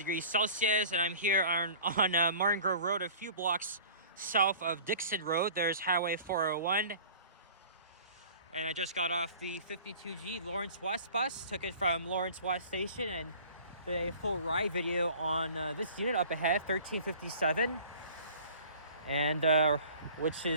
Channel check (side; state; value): both; inverted; correlation -0.45